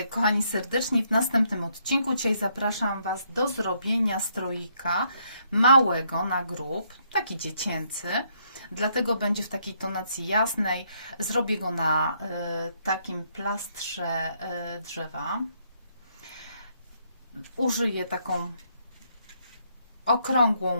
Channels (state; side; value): inverted; both; correlation -0.72